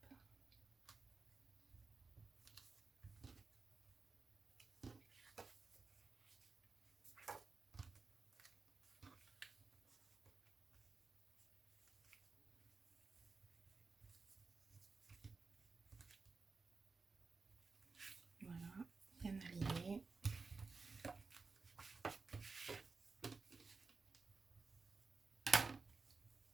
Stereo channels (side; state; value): left; quieter; 4.3 dB